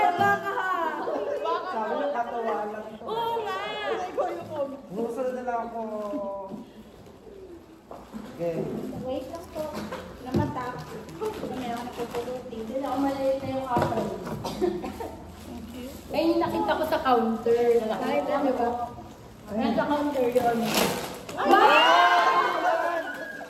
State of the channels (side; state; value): both; identical; correlation 1.00